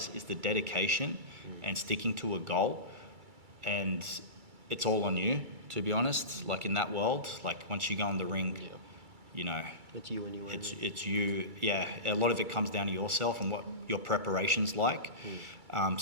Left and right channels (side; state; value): left; late; 2.3 ms